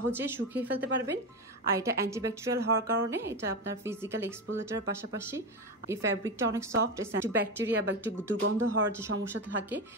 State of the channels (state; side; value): normal; both; correlation 0.17